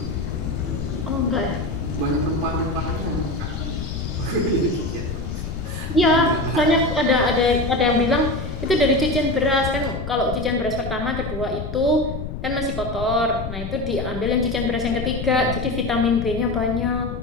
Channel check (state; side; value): noise; left; rumble, 7 dB below the sound